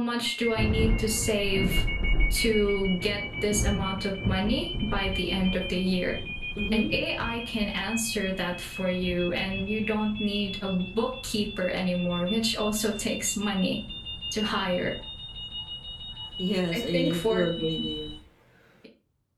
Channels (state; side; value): identical; both; correlation 1.00